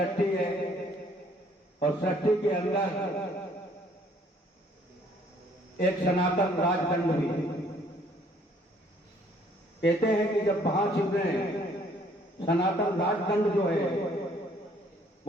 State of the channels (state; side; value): normal; both; correlation 0.62